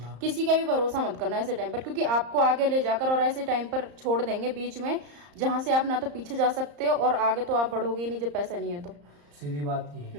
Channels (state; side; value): late; left; 34 ms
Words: किसी का भी भरोसा मत करना ऐसे टाइम पर, क्योंकि आपको आगे ले जाकर और ऐसे टाइम पर छोड़ देंगे बीच में, जहां से आप ना तो पीछे जा सकते हो और आगे तो आप बढ़ोगे ही नहीं जब पैसा नहीं है तो। सीधी बात ये